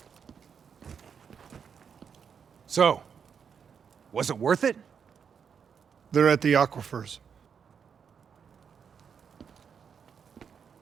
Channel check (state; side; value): quieter; left; 6.9 dB